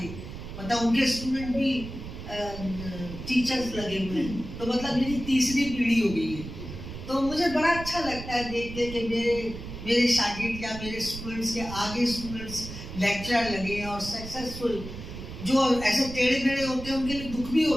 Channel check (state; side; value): noise; right; rumble, 10 dB below the sound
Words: मतलब उनके स्टूडेंट भी टीचर्स लगे हुए हैं। तो मतलब मेरी तीसरी पीढ़ी हो गई है। तो मुझे बड़ा अच्छा लगता है देख के कि मेरे शागिर्द या मेरे स्टूडेंट्स के आगे स्टूडेंट्स लेक्चरर लगे और सक्सेसफुल। जो ऐसे टेढ़े मेढ़े होते हैं उनके लिए दुख भी